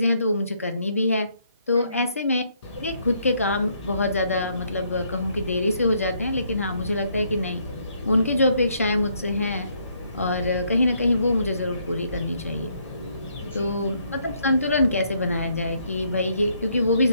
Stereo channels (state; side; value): inverted; both; correlation -0.71